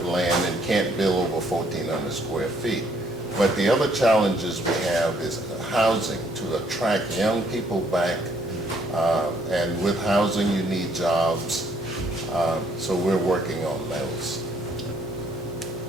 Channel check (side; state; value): both; normal; correlation 0.66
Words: land and can't build over 1,400 square feet. But the other challenges we have is housing, to attract young people back. And with housing, you need jobs. So we're working on those.